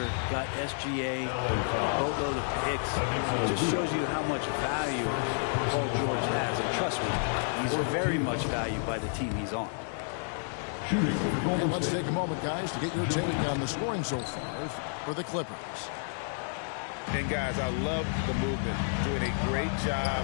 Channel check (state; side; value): silent; right; digital silence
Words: got SGA, a boatload of picks. It just shows you how much value Paul George has. And trust me, he's very much valued by the team he's on. And let's take a moment, guys, to get your take on the scoring so far for the Clippers. And, guys, I love the movement. Doing a great job